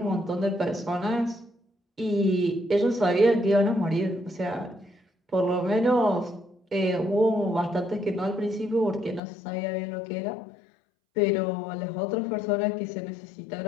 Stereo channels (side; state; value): right; drops out; at 9.2 s